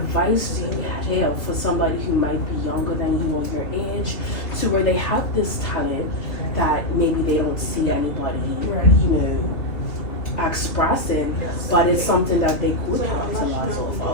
do you have for somebody who might be younger than you or your age, to where they have this talent that maybe they don't see anybody, expressing, but it's something that they could capitalize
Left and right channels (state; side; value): late; right; 3.1 ms